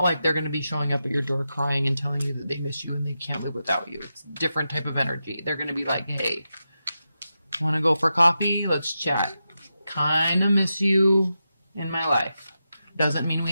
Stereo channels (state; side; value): inverted; both; correlation -0.89